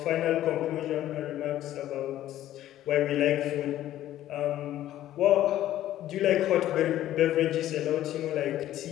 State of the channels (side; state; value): right; quieter; 13.1 dB